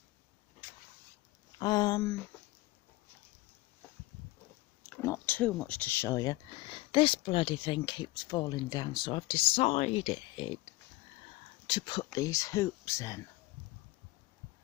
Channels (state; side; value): quieter; right; 20.2 dB